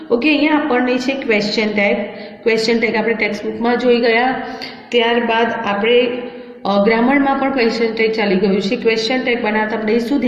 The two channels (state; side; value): identical; both; correlation 1.00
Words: ओके, अहींया आपणे छे क्वेश्चन टैग। क्वेश्चन टैग आपणे टेक्स्टबुक में जोई गया। त्यारबाद आपणे ग्रामर में पण क्वेश्चन टैग चाली गयुं छे। क्वेश्चन टैग बनावता आपणे शुं